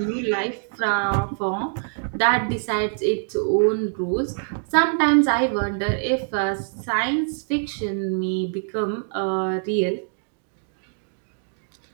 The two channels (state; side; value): silent; left; digital silence